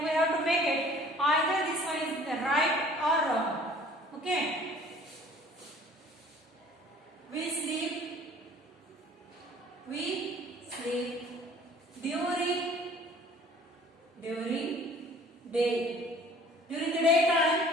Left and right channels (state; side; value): normal; both; correlation 0.51